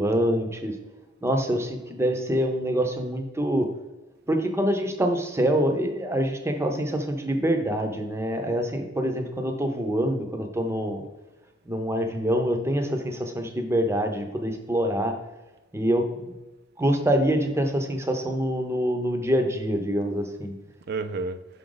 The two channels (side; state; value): both; normal; correlation 0.70